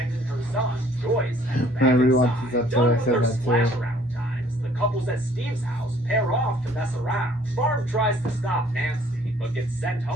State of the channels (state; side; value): normal; both; correlation 0.58